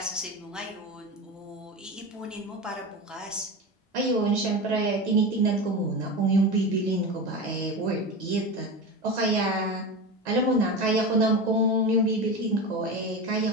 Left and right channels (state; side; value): normal; both; correlation 0.25